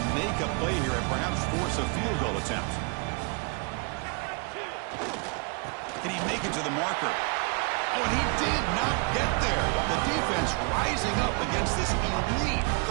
make a play here and perhaps force a field goal attempt. Can he make it to the marker? Oh, and he did not get there. The defense rising up against this elite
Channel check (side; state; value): left; quieter; 32.9 dB